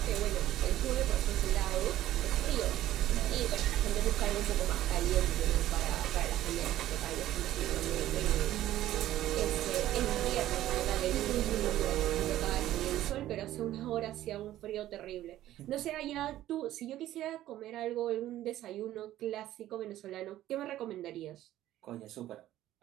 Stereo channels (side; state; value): left; quieter; 13.8 dB